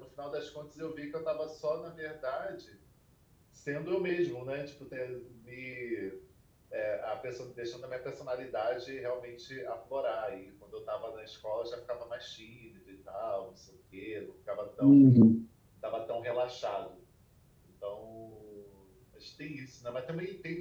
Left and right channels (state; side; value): identical; both; correlation 1.00